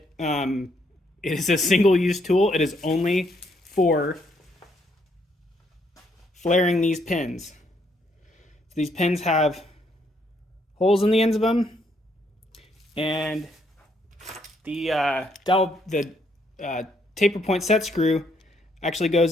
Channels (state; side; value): normal; both; correlation 0.72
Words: It is a single-use tool. It is only for flaring these pins. So these pins have holes in the ends of them, and the taper point set screw actually